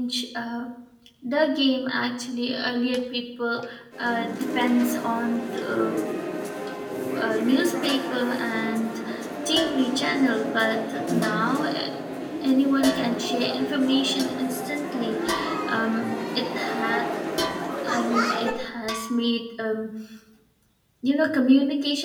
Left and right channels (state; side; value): identical; both; correlation 1.00